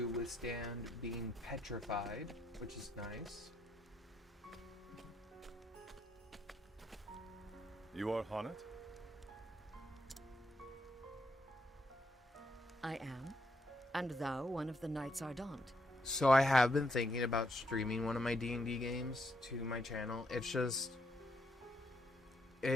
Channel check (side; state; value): both; normal; correlation 0.76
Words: withstand being petrified, which is nice. You are Haunted? I am. And thou one of the Knights Ardent. So I have been thinking about streaming one of my D&D games to my channel. It's just...